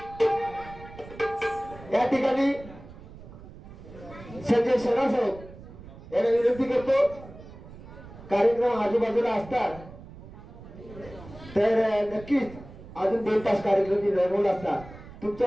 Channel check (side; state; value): right; noise; rumble, 17 dB below the sound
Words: या ठिकाणी संजय शेलार साहेब यांना विनंती करतो, कार्यक्रम आजूबाजूला असतात तर नक्कीच अजून 2 तास कार्यक्रम रंगवला असता.